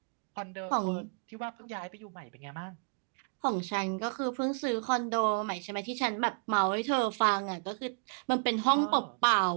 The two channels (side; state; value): left; quieter; 39.8 dB